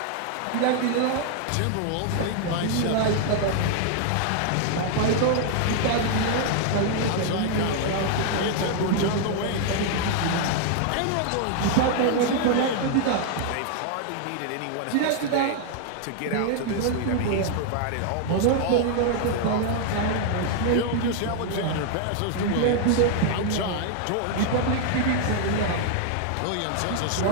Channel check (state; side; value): different; both; correlation 0.00